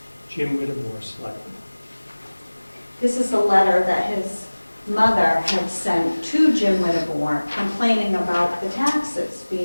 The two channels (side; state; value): both; inverted; correlation -1.00